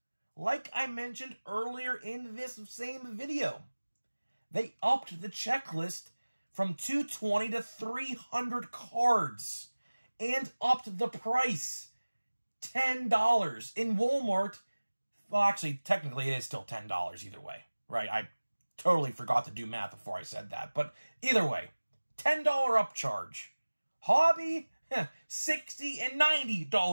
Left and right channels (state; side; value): inverted; both; correlation -1.00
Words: like I mentioned earlier in this same video, they upped the checklist from 220 to 300 cards and upped the price. $10 in Walmart. Well, actually, technically, it is still $10 either way, right? I totally forgot to do math before I said that. But either way, $10 upcharge. Hobby, $60 and $90